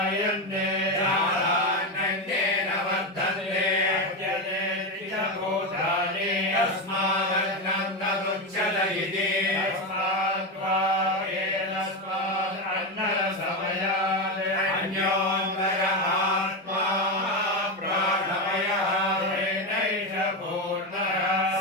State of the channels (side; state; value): both; normal; correlation 0.13